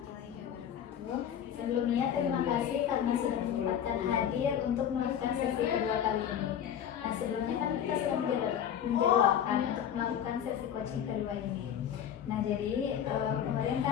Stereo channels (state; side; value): quieter; right; 9.4 dB